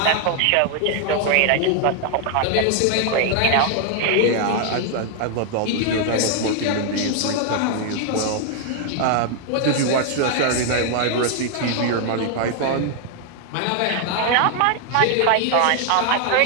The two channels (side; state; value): both; different; correlation 0.00